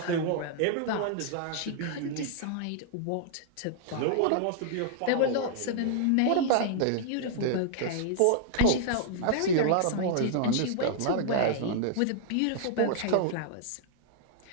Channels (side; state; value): both; different; correlation -0.01